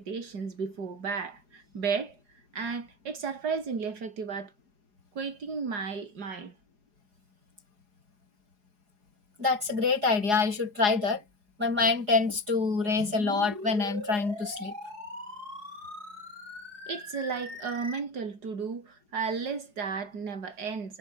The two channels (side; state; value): left; late; 4.8 ms